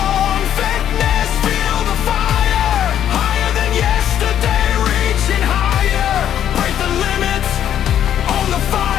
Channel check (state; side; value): quieter; right; 10.3 dB